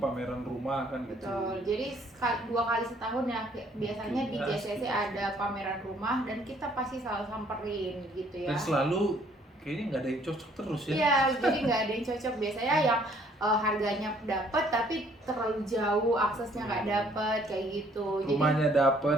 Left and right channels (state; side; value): normal; both; correlation 0.62